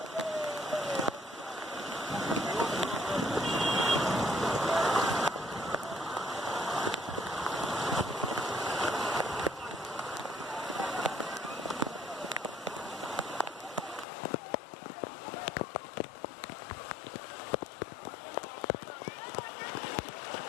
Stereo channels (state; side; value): drops out; right; at 14.1 s